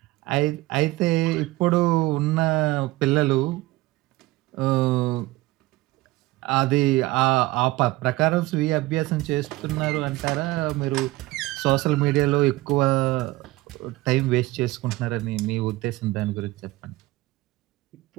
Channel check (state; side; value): quieter; left; 19.4 dB